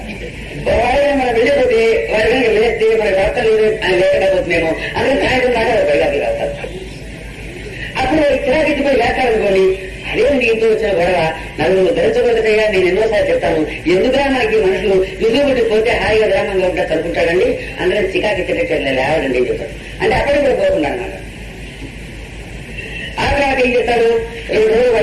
మనం వెళ్ళిపోతే వారి కనుక లేస్తే మన ప్రార్థన లేదు ఆయన లేకపోతున్నామో అందుకని సాయంత్రం దాకా బయటకు రాస్తారు. అప్పుడు చిరాకెత్తిపోయి లేస్తారనుకోండి, అదేంటి ఇంట్లో వచ్చిన గొడవ నలుగురు ధరించబోతుంటేగా నేను ఎన్నోసార్లు చెప్తాను. ఎందుకురా మనకి మనుషులు విజుబుట్టి పోతే హాయిగా గ్రామంలో ఉంటా చదువుకుంటాడండి, అందరం చికాకెత్తినట్టు లేవడండి ఏం చెప్తారు. అంటే అక్కడికి కూడా పోకుండా అనమాట. ఆ తర్వాత ఏం చేస్తాడు, 2 రోజులు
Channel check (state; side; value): identical; both; correlation 1.00